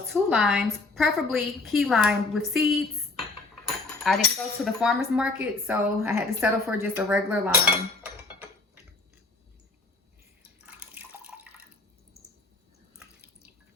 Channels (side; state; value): right; quieter; 3.5 dB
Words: 2 limes, preferably key lime with seeds. I didn't go to the farmer's market, so I had to settle for just a regular lime.